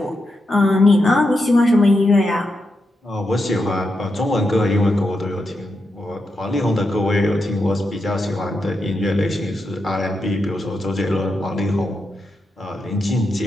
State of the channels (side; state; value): both; normal; correlation 0.86